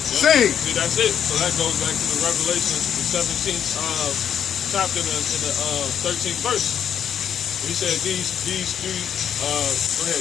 See, that's it. So that goes back to the Revelation, the 17th chapter in the 13th verse. He said these three, go ahead,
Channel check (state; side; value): quieter; right; 8.8 dB